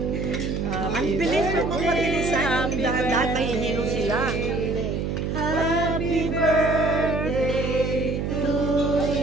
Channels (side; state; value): right; noise; hum, 1 dB below the sound